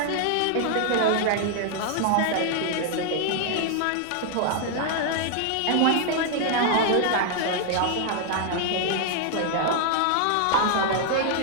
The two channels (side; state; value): both; different; correlation 0.00